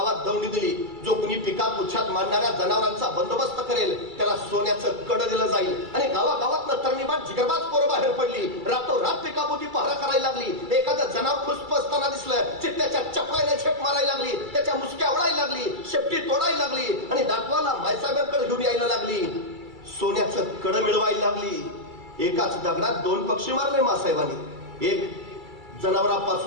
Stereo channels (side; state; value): left; late; 2.3 ms